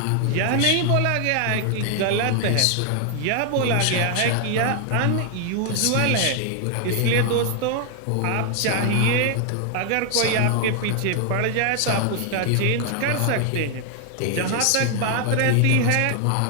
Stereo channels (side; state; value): both; different; correlation 0.00